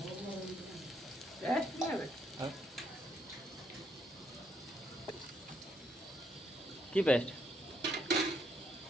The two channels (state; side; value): normal; both; correlation 0.73